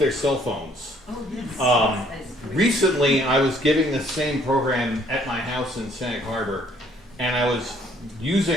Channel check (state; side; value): normal; both; correlation 0.62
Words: cell phones. Oh, yes. Recently, I was giving the same program at my house in Sag Harbor, and I was